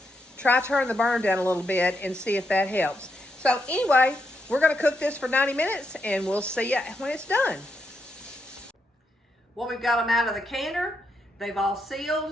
try turning the burner down a little bit and see if that helps. So anyway, we're going to cook this for 90 minutes, and we'll see you when it's done. Well, we've got them out of the canner. They've all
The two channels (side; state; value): both; normal; correlation 0.81